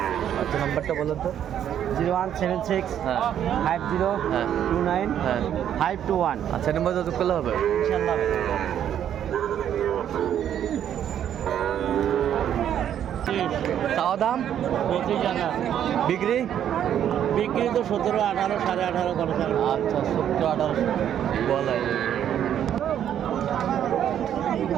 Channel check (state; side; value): quieter; left; 10.0 dB